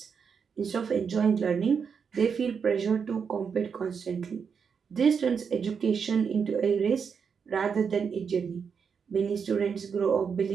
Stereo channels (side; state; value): left; quieter; 6.3 dB